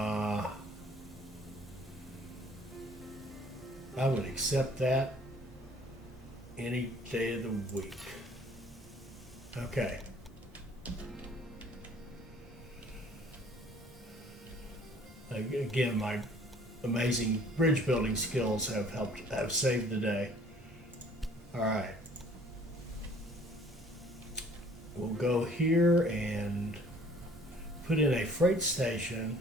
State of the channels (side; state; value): both; normal; correlation 0.55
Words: I would accept that any day of the week. Okay. Again, my amazing bridge building skills have saved the day. All right. We'll go here and put in a freight station